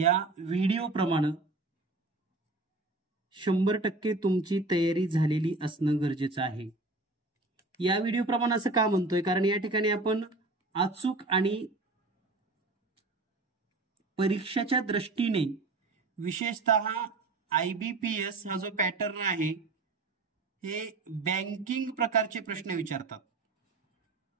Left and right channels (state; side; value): quieter; left; 3.2 dB